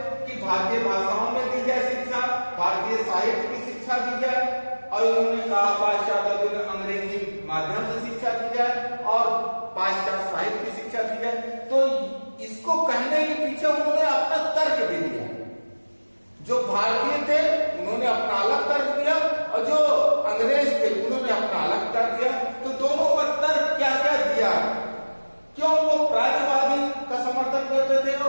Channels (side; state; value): both; inverted; correlation -1.00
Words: कि भारतीय भाषाओं में दी जाए शिक्षा, भारतीय साहित्य की शिक्षा दी जाए, और उन्होंने कहा पाश्चात्यवादियों ने अंग्रेजी माध्यम से शिक्षा दी जाए और पाश्चात्य साहित्य की शिक्षा दी जाए। तो इसको कहने के पीछे उन्होंने अपना तर्क भी दिया। जो भारतीय थे उन्होंने अपना अलग तर्क दिया, और जो अंग्रेज थे उन्होंने अपना अलग तर्क दिया। तो दोनों का तर्क क्या क्या दिया, क्यों वो प्राच्यवादी का समर्थन करते थे